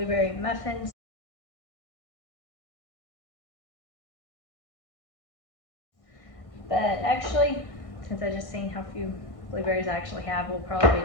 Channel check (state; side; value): late; right; 1.6 ms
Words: muffins. But actually, since I just seen how few blueberries I actually have, we'll probably